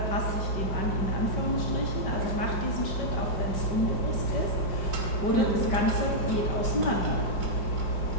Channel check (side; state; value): right; late; 5.2 ms